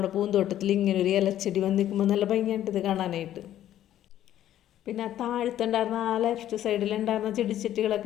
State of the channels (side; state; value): right; quieter; 12.0 dB